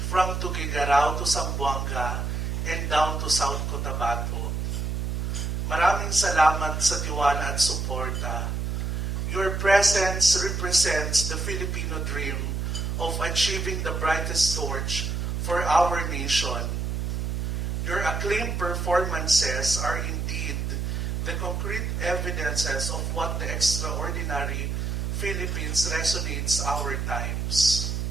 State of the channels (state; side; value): noise; right; hum, 1 dB below the sound